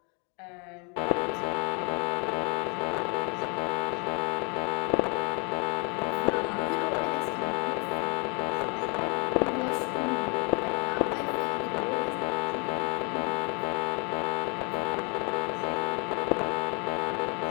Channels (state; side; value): quieter; right; 33.8 dB